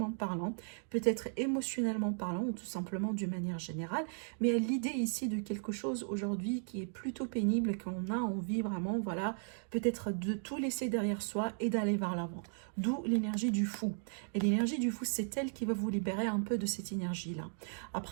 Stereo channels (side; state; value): left; silent; 54 dB below the other